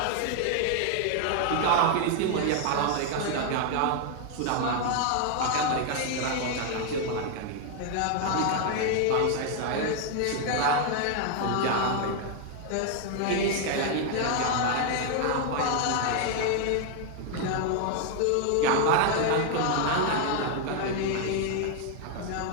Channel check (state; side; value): different; both; correlation 0.00